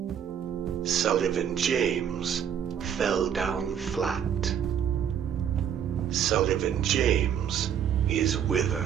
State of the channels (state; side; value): quieter; left; 8.8 dB